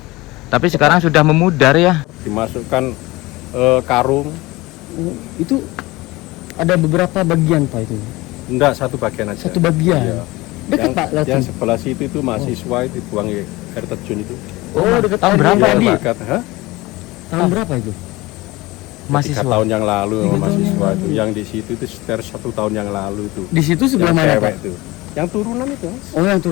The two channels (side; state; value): right; quieter; 20.8 dB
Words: Tapi sekarang sudah memudar ya. Dimasukkan karung. Itu ada beberapa bagian Pak itu. Enggak, satu bagian aja. Satu bagian. Iya. Dekat Pak Yang langsung. sebelah situ itu mahasiswa itu buang air terjun itu. Oh, dekat tahun berapa tadi. Dekat, Tahun berapa itu? 3 tahun yang lalu 3 tahun mahasiswa yang itu. lalu. Yang di situ itu sekitar 1 tahun yang lalu itu. Di situ sebelah Yang mana cewek Pak? itu. Yang turunan itu. Mas. Oh, yang